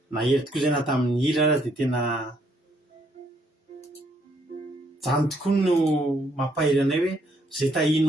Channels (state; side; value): normal; both; correlation 0.70